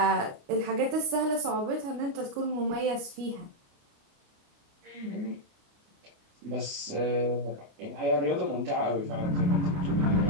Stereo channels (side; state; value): left; late; 29 ms